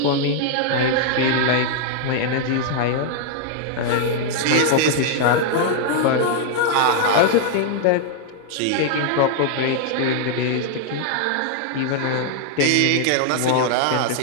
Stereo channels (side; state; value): both; different; correlation 0.00